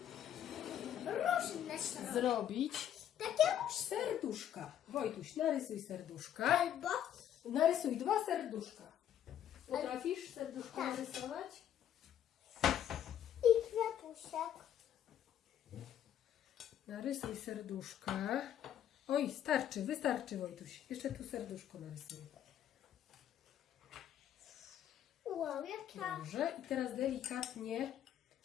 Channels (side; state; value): right; quieter; 10.4 dB